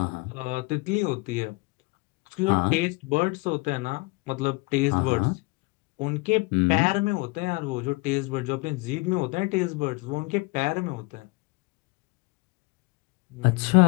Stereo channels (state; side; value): quieter; right; 26.5 dB